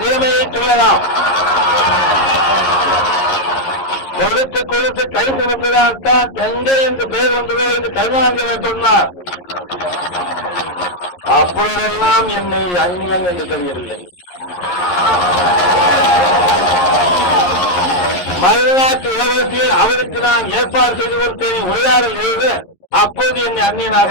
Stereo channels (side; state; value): right; late; 11 ms